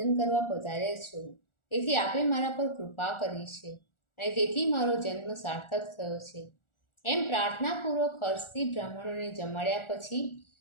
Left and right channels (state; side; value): late; right; 1.4 ms